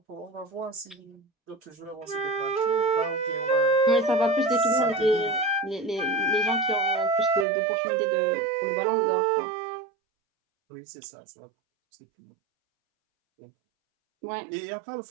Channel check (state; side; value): drops out; left; at 7.5 s